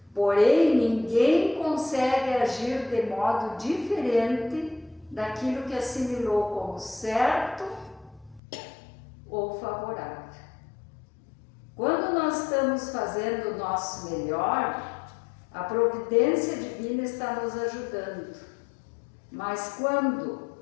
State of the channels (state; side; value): drops out; right; at 8.4 s